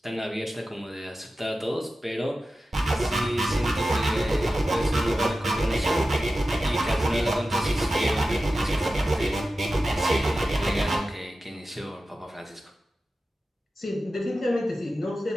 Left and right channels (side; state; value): both; normal; correlation 0.93